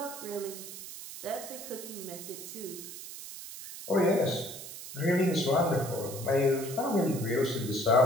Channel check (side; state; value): right; noise; hiss, 11 dB below the sound